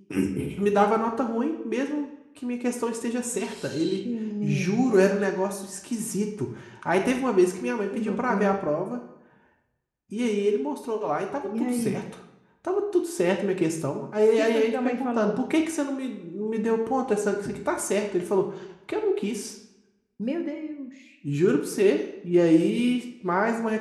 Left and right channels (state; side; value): identical; both; correlation 1.00